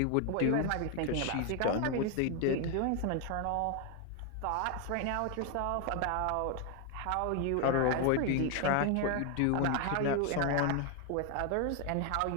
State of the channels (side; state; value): both; different; correlation 0.01